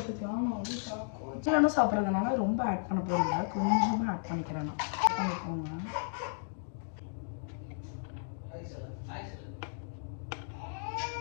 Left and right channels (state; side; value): silent; right; digital silence